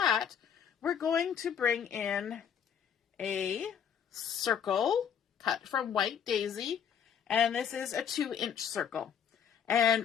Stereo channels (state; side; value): quieter; right; 8.1 dB